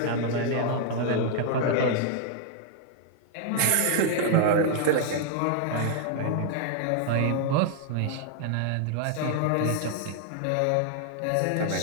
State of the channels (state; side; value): different; both; correlation 0.00